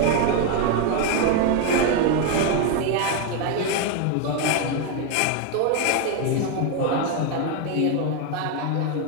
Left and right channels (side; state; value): both; different; correlation 0.01